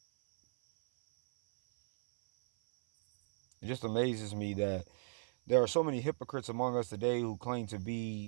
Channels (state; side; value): silent; left; 54 dB below the other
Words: It just amazes me that there are so many hypocrites among us today who claim to